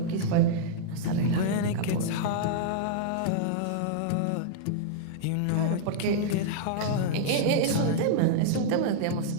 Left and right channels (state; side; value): different; both; correlation -0.02